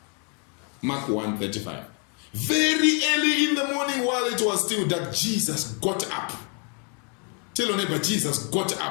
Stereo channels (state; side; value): quieter; right; 37.0 dB